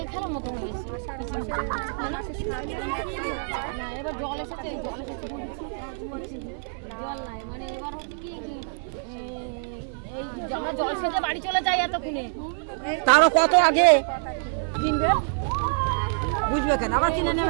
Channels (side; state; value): left; silent; 61 dB below the other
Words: খেলার মতো হয়েছে এবার জল এসেছে জল নাই মানে এবার হচ্ছে কি এই আমরা জল সেজে বাড়ি চলে যাই এতক্ষণে তারও কত আগে কিনবে বুঝবে কেন আবার কিনে